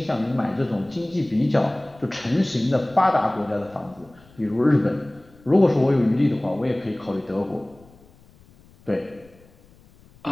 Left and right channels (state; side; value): noise; left; rumble, 27 dB below the sound